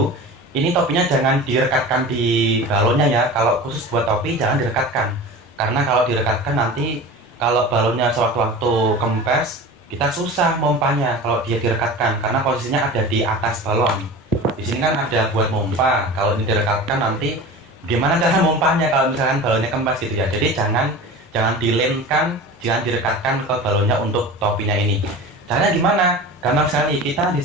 Ini topinya jangan direkatkan di balonnya ya. Kalau khusus buat topi jangan direkatkan, karena kalau direkatkan nanti kalau balonnya sewaktu-waktu kempes kita susah mompanya kalau dia direkatkan, karena posisinya ada di atas balon. Di sini kan ada buat mompa. Kalau ini direkatkan nanti gimana cara mompanya kalau misalkan balonnya kempes gitu ya. Jadi jangan dilemkan, jangan direkatkan ke balonnya untuk topinya ini. Caranya gimana? Gampang sekali. Kita di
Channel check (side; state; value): both; normal; correlation 0.34